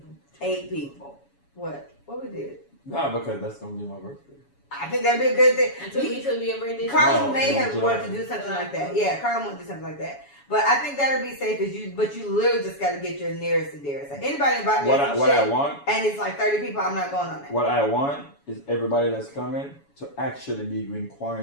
8 people. What we did? Nah, because that's gonna be my birthday. I think that'd be a good thing. And 2 weeks will be a birthday. Carlin No, may have July. wanted to do something like that. Yeah, Carlin wanted to do something like that. But I think that'll be safe but you literally just got to get your nearest and dearest. Like anybody invite me What I want, and it's like 30 people, I'm not going on that. what I want is everybody that's coming to actually be in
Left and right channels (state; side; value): late; right; 7.1 ms